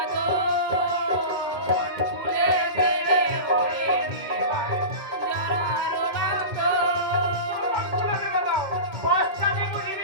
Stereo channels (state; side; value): late; left; 2.1 ms